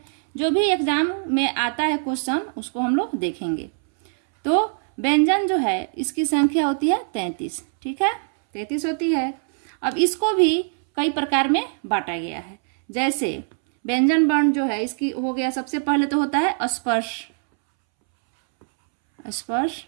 जो भी एग्जाम में आता है क्वेश्चन उसको हम लोग देखेंगे। तो व्यंजन जो है इसकी संख्या होती है 33। ठीक है, 33 होती है। अब इसको भी कई प्रकार में बांटा गया है। जैसे व्यंजन वर्ण जो है इसकी हो गया, सबसे पहले तो होता है स्पर्श। स्पर्श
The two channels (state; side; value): silent; left; 64 dB below the other